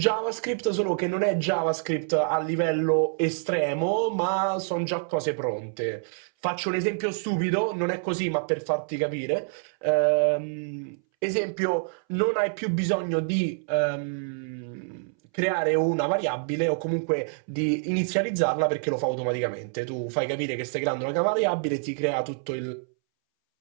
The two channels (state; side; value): silent; left; 60 dB below the other